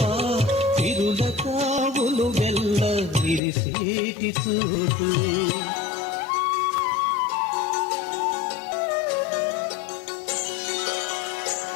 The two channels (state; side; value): drops out; right; at 3.4 s